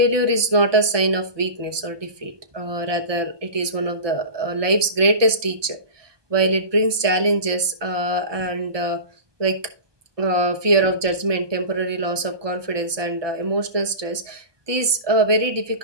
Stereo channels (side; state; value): left; late; 1.2 ms